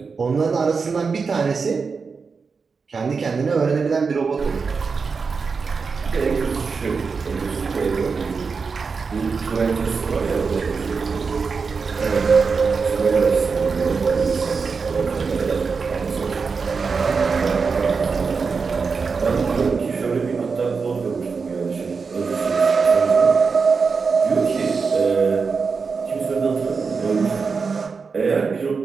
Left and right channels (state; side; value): quieter; left; 5.1 dB